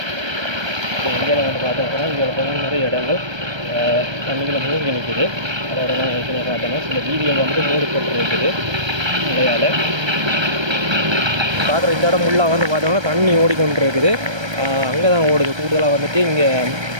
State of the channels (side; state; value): left; late; 1.3 ms